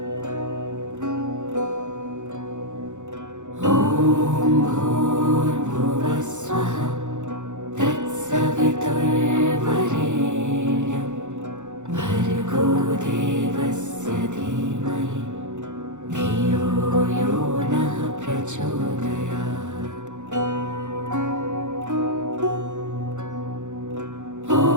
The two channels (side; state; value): left; late; 0.85 ms